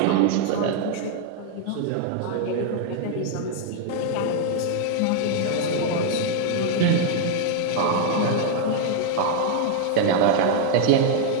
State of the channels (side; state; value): both; different; correlation 0.00